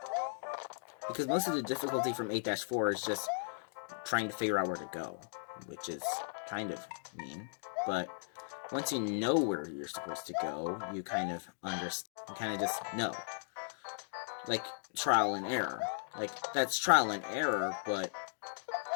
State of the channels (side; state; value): right; silent; digital silence